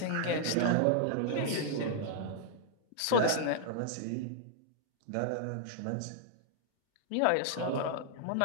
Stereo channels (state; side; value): different; both; correlation -0.01